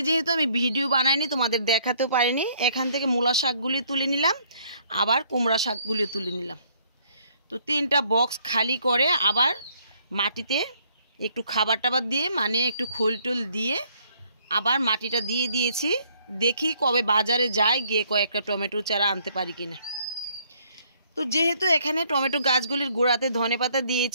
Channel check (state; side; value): inverted; both; correlation -0.65